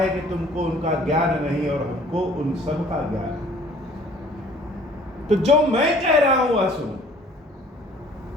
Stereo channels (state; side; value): normal; both; correlation 0.53